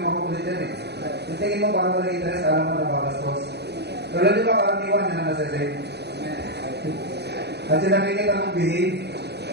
makukulit dyan Yung tingin mo, parang walang interest, alam mo na babastos. Pero di ba, karaniwan na nasa-save? At yung nakikita mong behave,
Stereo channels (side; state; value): left; late; 0.48 ms